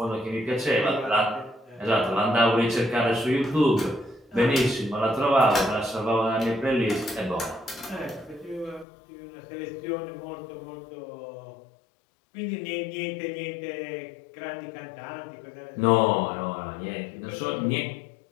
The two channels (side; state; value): right; drops out; at 8.8 s